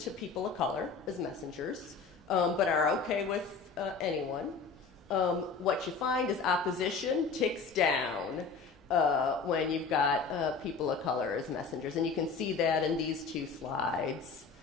people of color as messengers, but are okay with anyone. What you find is opposition ticks down when you've got people of color as messengers, and you can see that in these 2 slides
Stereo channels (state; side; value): quieter; right; 4.9 dB